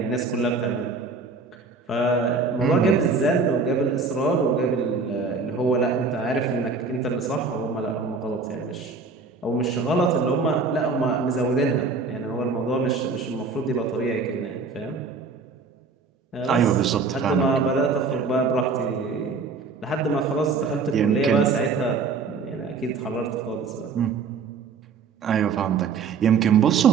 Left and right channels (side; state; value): left; quieter; 4.6 dB